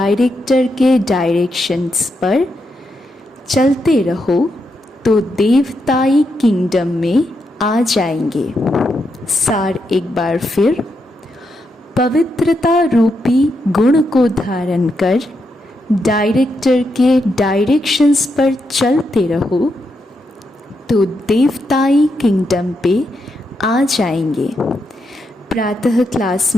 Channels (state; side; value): normal; both; correlation 0.82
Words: के डायरेक्शंस पर चलते रहो तो देवताई किंगडम में आ जाएंगे। सार एक बार फिर, पवित्रता रूपी गुण को धारण कर डायरेक्टर के डायरेक्शंस पर चलते रहो तो देवताई किंगडम पे आ जाएंगे। प्रातः क्लास